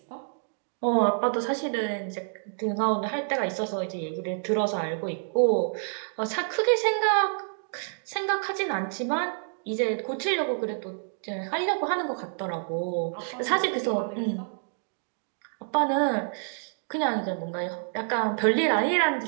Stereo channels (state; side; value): silent; left; digital silence